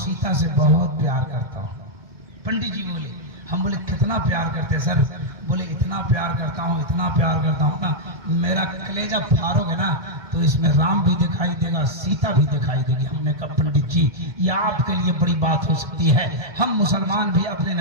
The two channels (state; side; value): late; left; 1.2 ms